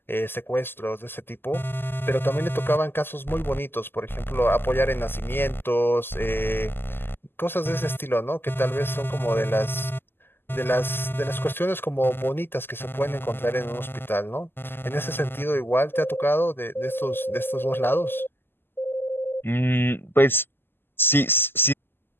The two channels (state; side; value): late; right; 0.10 ms